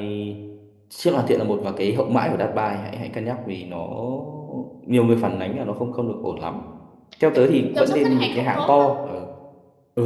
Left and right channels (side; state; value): both; identical; correlation 1.00